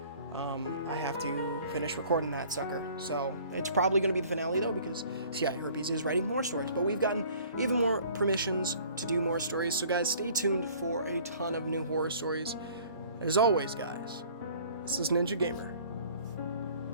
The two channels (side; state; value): both; inverted; correlation -0.52